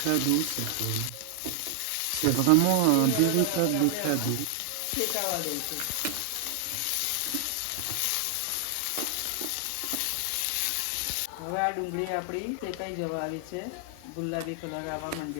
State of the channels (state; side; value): different; both; correlation 0.00